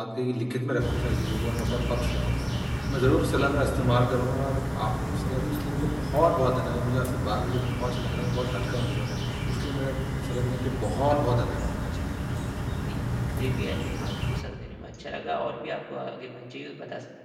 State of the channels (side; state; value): both; identical; correlation 1.00